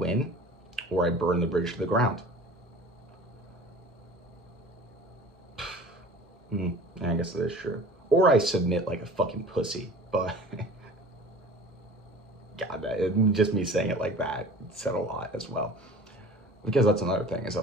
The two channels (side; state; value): both; normal; correlation 0.42